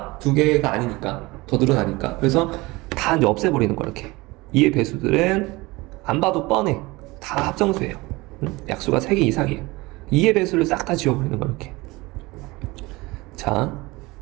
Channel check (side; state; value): left; quieter; 22.1 dB